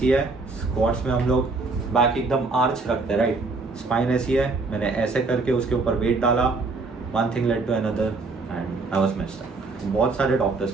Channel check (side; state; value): left; quieter; 3.8 dB